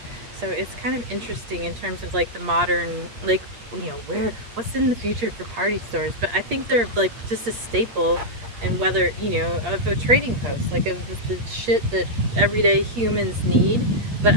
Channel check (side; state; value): left; late; 8.5 ms